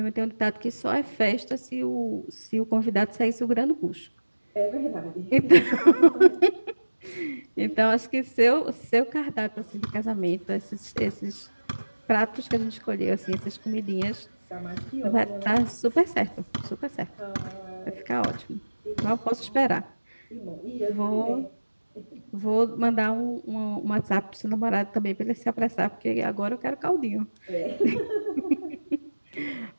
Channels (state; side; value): inverted; both; correlation -1.00